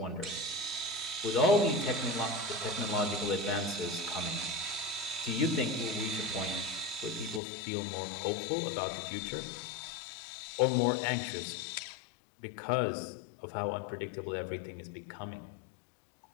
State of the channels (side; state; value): right; drops out; at 7.4 s